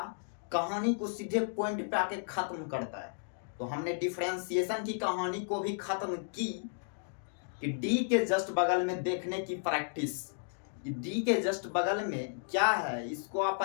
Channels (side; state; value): right; silent; digital silence